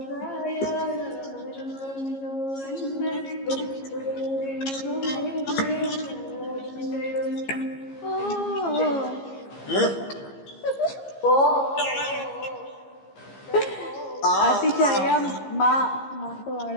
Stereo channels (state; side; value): late; right; 15 ms